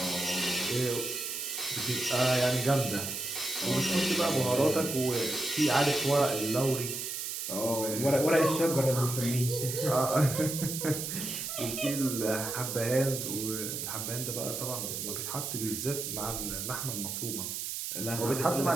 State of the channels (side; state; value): right; noise; hiss, 4 dB below the sound